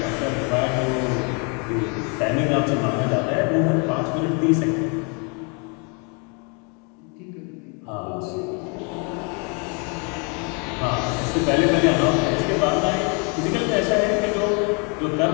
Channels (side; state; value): right; quieter; 35.3 dB